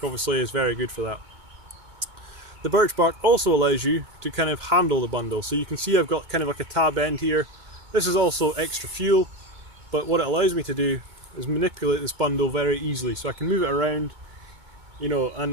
obviously is very good for that. The birch bark also allows you to kind of handle the bundle. So you can see I've got kind of like a tab end here. This is also extra fuel, but what it allows me to do is manipulate this bundle very easily. So I can move it around,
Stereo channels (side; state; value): left; late; 2.2 ms